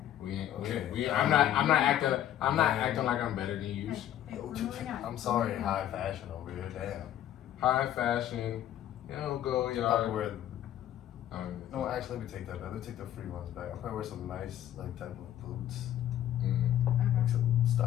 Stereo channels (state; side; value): quieter; right; 11.7 dB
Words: We ain't. Okay. I'm not acting like I'm better than you. Hey, we're moving on. I'm sorry, high fashion over here. Damn. High fashion, go Probably yard. wear. No, actually, let me take that back. Let me take the free runs back. I'll probably wear some nice like type of boots, like some